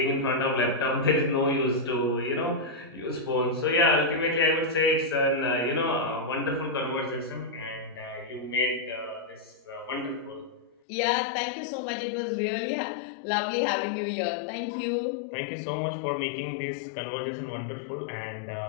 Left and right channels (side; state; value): right; drops out; at 10.8 s